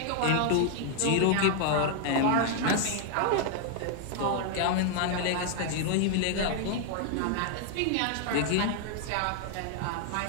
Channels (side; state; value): both; different; correlation 0.00